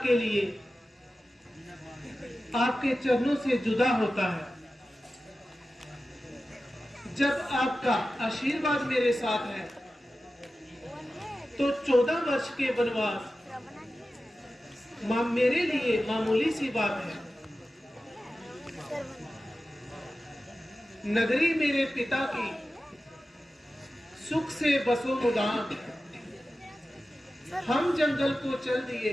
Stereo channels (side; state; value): both; normal; correlation 0.94